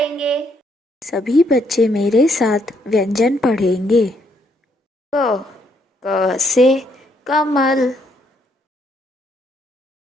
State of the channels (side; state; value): both; normal; correlation 0.71